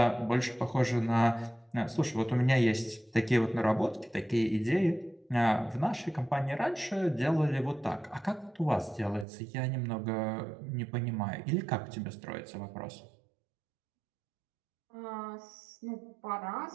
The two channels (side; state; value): left; drops out; at 9.2 s